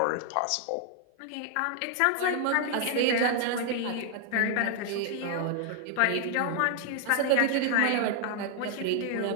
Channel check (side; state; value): both; different; correlation 0.00